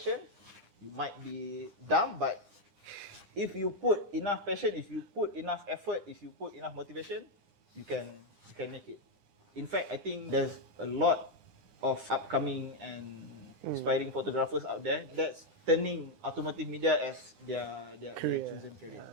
you might be dumb, but if you put enough passion, if you put enough effort, if you put enough motivation, you can make it. In fact, I think there's a lot of upcoming and inspiring photographers out there that's turning automotive media as their chosen career.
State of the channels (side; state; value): left; late; 9.8 ms